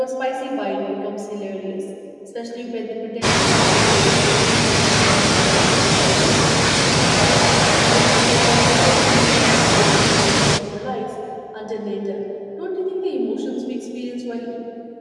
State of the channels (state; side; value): identical; both; correlation 1.00